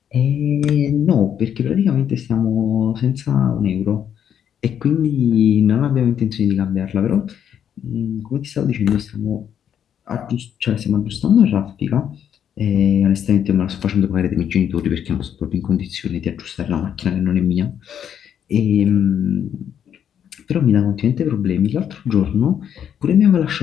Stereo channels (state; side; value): quieter; right; 9.0 dB